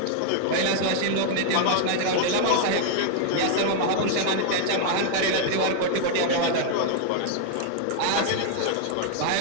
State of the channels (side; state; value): both; different; correlation -0.01